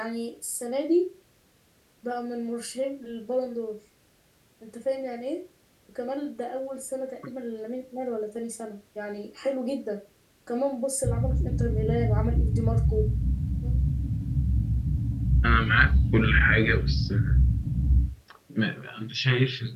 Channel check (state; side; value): identical; both; correlation 1.00